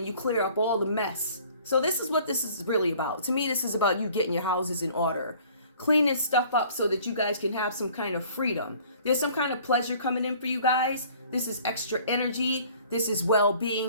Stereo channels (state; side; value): inverted; both; correlation -0.52